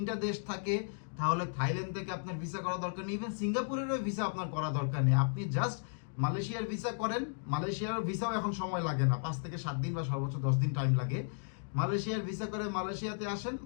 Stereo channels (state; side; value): silent; right; digital silence